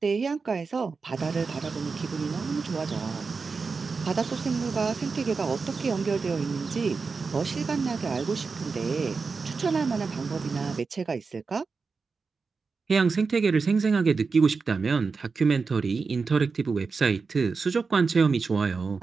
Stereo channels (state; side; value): quieter; left; 4.7 dB